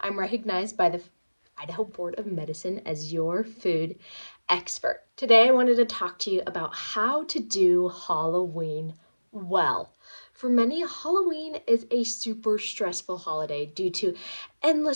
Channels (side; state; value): both; inverted; correlation -1.00